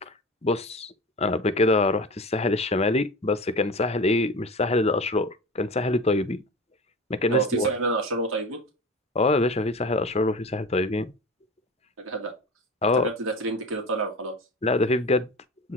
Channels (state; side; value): normal; both; correlation 0.32